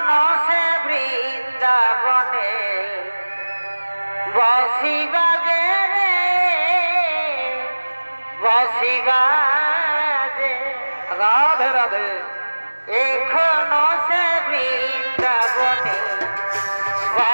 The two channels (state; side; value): inverted; both; correlation -1.00